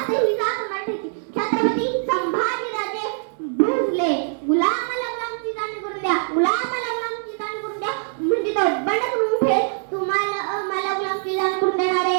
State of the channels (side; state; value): left; silent; 64 dB below the other